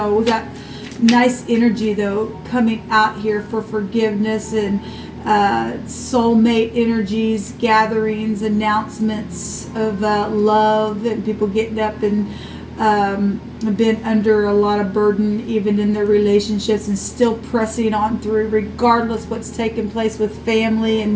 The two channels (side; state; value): both; identical; correlation 1.00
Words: we got nice energy, though, coming out here for forgiveness and soulmate energies, gatherings, announcements of love, and people getting up and have been under a lot of burden even in their relationships and still pressing on through regardless what's taking place with family